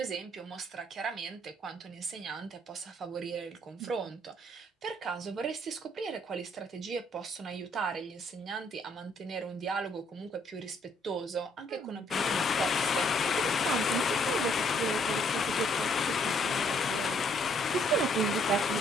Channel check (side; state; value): both; normal; correlation 0.67